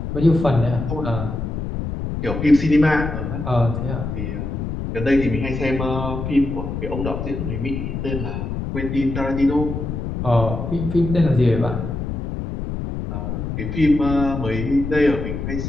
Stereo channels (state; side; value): noise; left; rumble, 4 dB below the sound